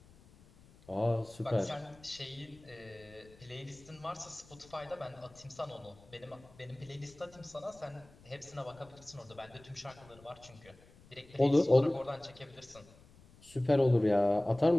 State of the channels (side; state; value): left; noise; rumble, 24 dB below the sound